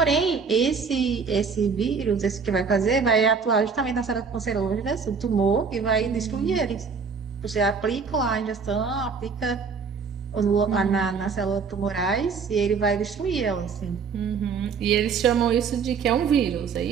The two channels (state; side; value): quieter; left; 5.6 dB